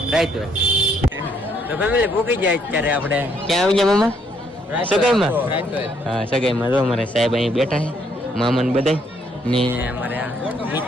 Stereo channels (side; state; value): both; normal; correlation 0.70